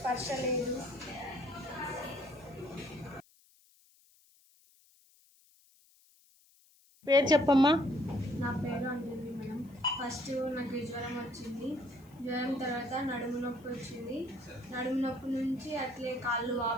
లేదు. పేరు చెప్పమ్మా. నా పేరు అంజలి మేడం. ఫస్ట్ నాకు జ్వరం వచ్చింది. జ్వరం తర్వాత నడుము నొప్పి వచ్చింది. నడుము నొప్పి నుంచి అట్లే కాళ్ళు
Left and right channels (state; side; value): noise; left; hiss, 30 dB below the sound